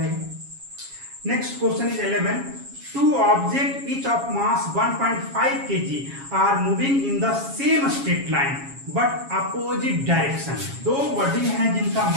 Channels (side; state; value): left; late; 7.3 ms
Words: Next question is 11, two objects each of mass 1.5 kg are moving in the same straight line but opposite direction। दो बॉडी हैं जिनका